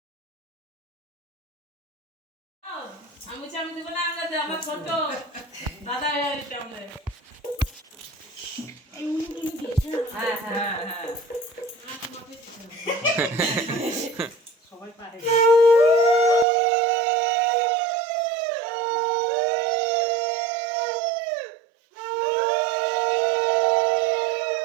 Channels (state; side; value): drops out; left; at 16.4 s